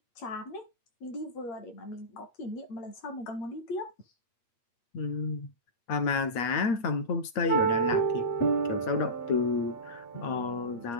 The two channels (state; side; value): late; right; 8.5 ms